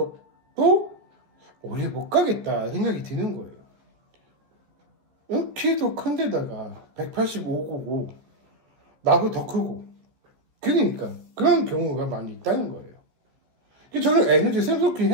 오래 못 가겠다 생각이 드는 거예요. 키도 큰데다가 185고고 나보다 더 크고 그러니까 그런 경우가 많이 있다는 거예요. 저는 에너지 샘솟긴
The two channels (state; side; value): late; left; 14 ms